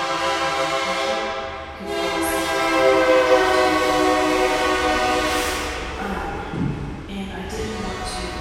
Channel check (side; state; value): both; identical; correlation 1.00